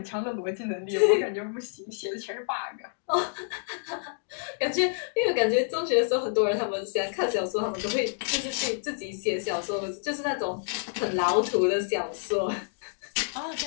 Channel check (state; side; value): silent; right; digital silence